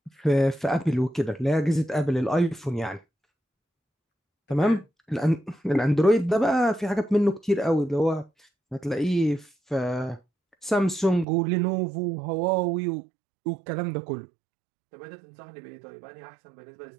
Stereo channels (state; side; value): drops out; left; at 11.2 s